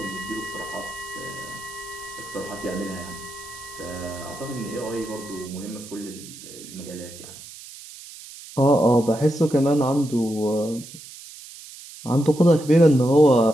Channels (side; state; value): right; noise; hiss, 16 dB below the sound